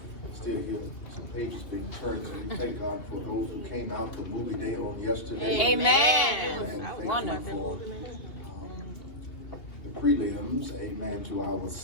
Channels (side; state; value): right; late; 2.8 ms